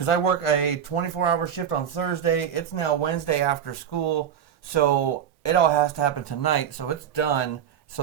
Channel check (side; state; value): left; quieter; 8.9 dB